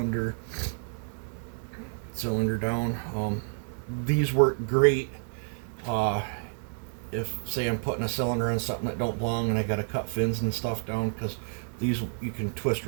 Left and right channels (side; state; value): left; silent; digital silence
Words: cylinder down. These work great if, say, I'm putting a cylinder on something that don't belong and I gotta cut fins and stuff down, because these you can twist